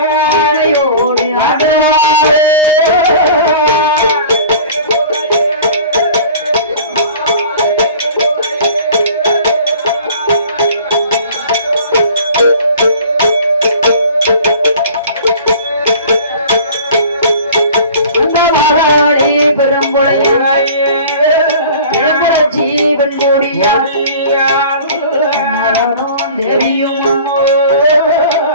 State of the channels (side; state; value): both; inverted; correlation -0.44